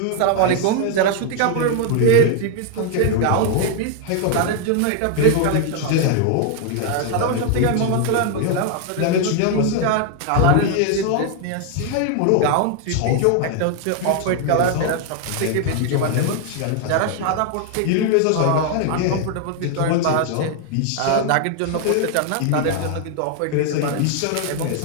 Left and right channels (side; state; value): both; different; correlation 0.00